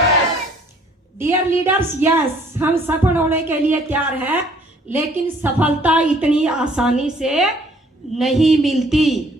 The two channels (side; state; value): both; normal; correlation 0.59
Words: डियर लीडर्स, यस, हम सफल होने के लिए तैयार हैं, लेकिन सफलता इतनी आसानी से नहीं मिलती।